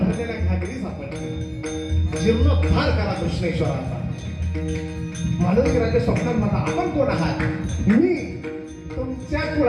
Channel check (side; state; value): both; identical; correlation 1.00